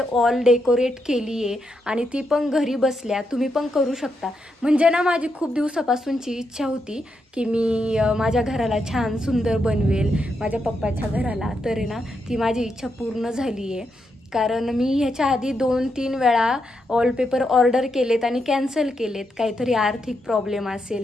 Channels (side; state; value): both; normal; correlation 0.82